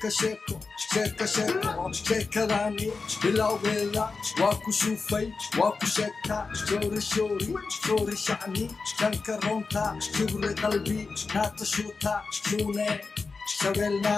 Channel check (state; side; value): quieter; right; 4.3 dB